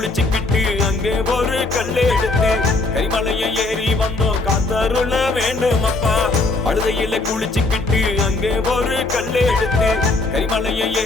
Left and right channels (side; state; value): right; quieter; 3.3 dB